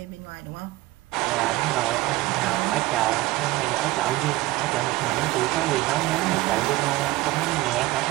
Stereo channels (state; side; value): quieter; left; 18.7 dB